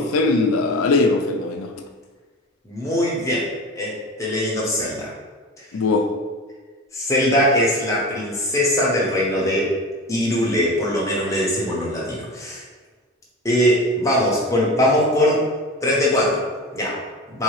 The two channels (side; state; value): both; normal; correlation 0.30